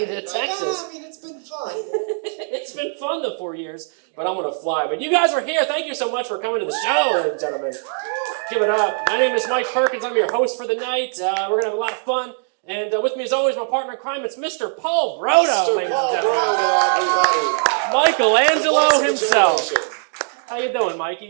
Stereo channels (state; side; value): silent; left; digital silence